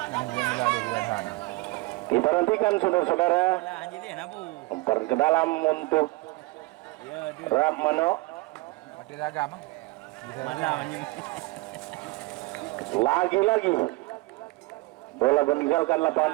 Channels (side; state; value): left; quieter; 22.7 dB